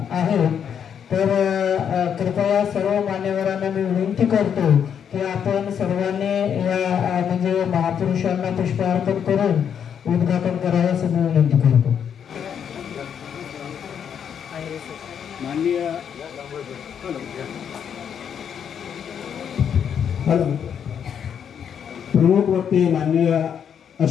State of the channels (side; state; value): right; quieter; 8.1 dB